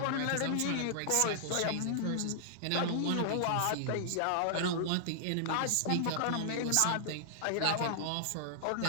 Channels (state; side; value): different; both; correlation -0.01